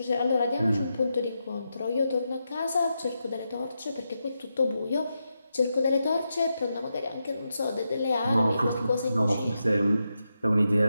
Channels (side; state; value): both; inverted; correlation -0.86